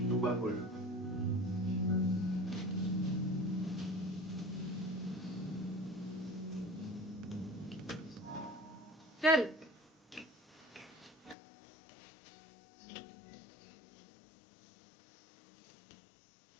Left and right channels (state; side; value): drops out; right; at 11.4 s